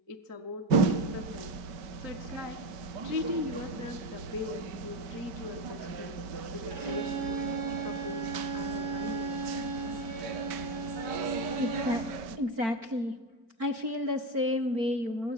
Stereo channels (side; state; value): left; late; 4.5 ms